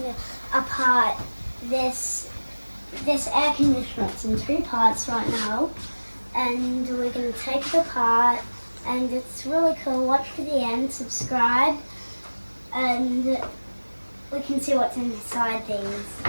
apart this air conditioner. It's in two parts right now, and we're going to take it apart, and it's really cool. Watch to the end, subscribe, and we can see what's inside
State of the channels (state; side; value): inverted; both; correlation -1.00